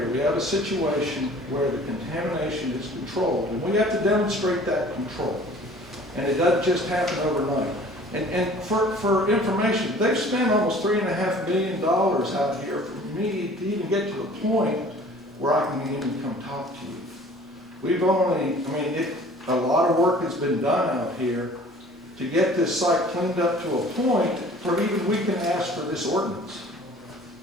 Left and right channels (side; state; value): both; normal; correlation 0.49